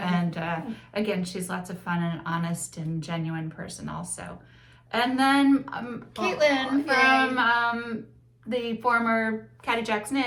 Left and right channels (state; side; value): identical; both; correlation 1.00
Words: again, she's lots of fun and honest and genuine person also. And then Caitlin Aw, from the former Caddy Jack's